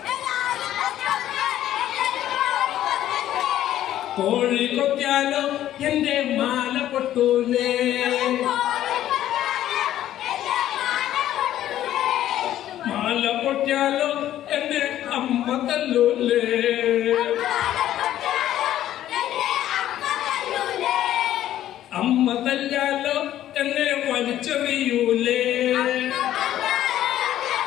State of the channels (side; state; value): right; quieter; 12.4 dB